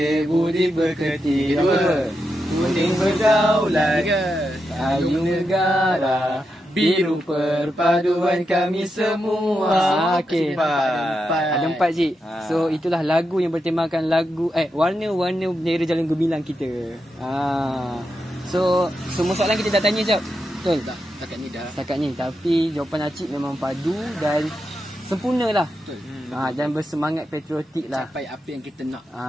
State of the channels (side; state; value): both; normal; correlation 0.86